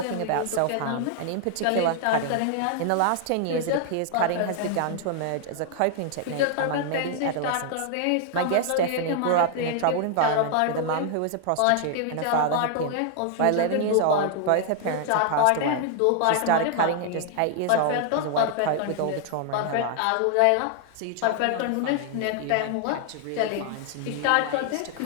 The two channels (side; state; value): both; different; correlation 0.00